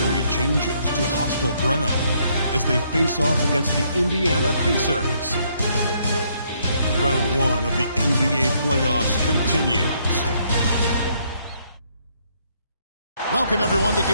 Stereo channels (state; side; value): inverted; both; correlation -0.70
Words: changes to hostile ground as they face off against the Indiana Pacers. Round 1 of the NBA playoffs continues. Welcome, everyone, to